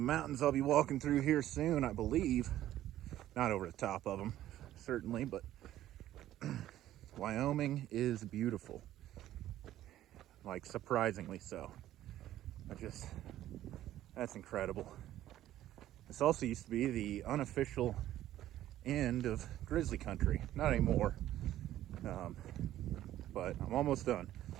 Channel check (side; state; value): left; quieter; 13.2 dB